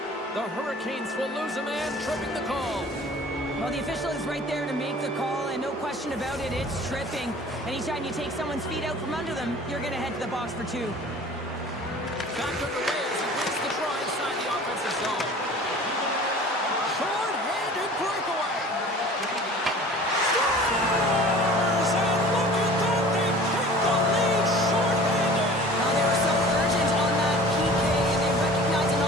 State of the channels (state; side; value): normal; both; correlation 0.45